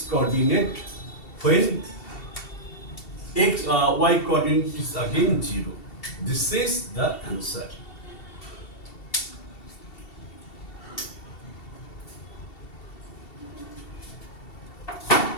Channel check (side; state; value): right; late; 2.7 ms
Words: coordinate when y coordinate is again 0. This is the answer.